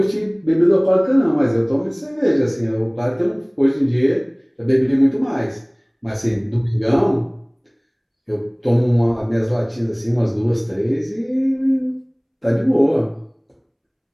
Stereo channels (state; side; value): identical; both; correlation 1.00